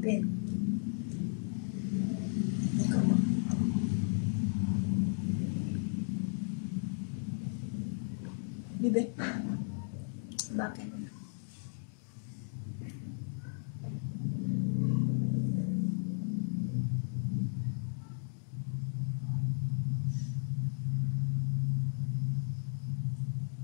Hindi ko makita. Bibe? Bakit?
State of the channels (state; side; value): silent; right; digital silence